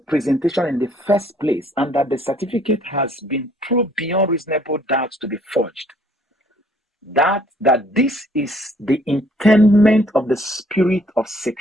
presentation in the first place and that the certificate has been proved beyond reasonable doubt to be forged. That this is the intendment of the spirit of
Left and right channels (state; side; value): normal; both; correlation 0.62